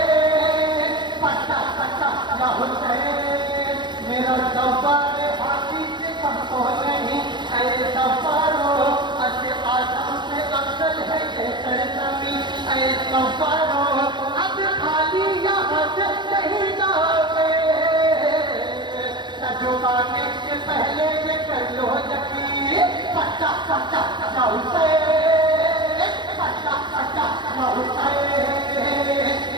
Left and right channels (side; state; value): left; late; 0.22 ms